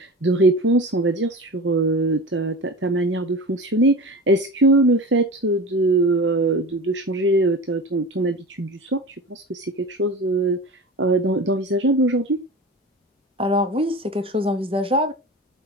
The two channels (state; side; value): normal; both; correlation 0.32